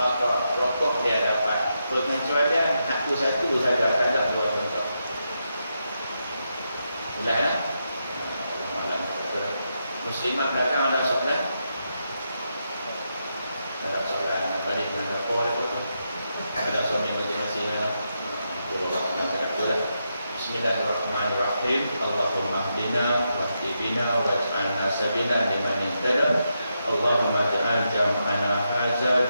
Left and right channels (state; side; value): inverted; both; correlation -0.84